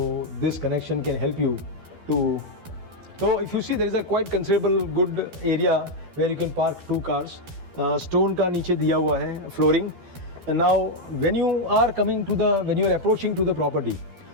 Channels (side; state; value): left; late; 12 ms